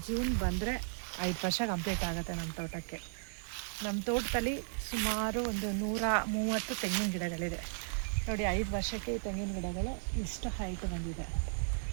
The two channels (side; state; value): left; silent; digital silence